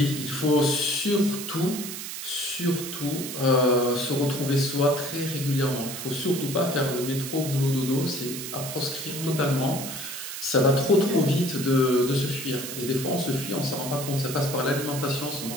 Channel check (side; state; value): right; noise; hiss, 7 dB below the sound